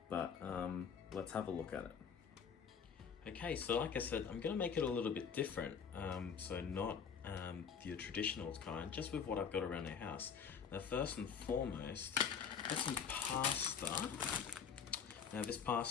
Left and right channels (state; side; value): quieter; right; 6.9 dB